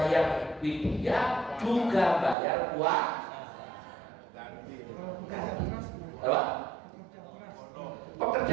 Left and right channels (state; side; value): drops out; left; at 2.4 s